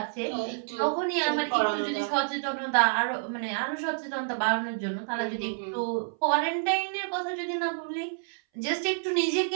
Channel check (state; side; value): silent; left; 59 dB below the other